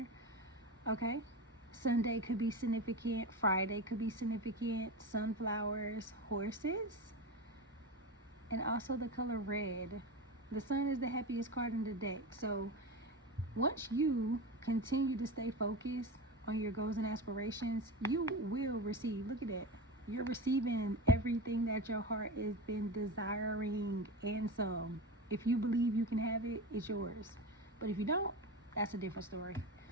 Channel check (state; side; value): normal; both; correlation 0.24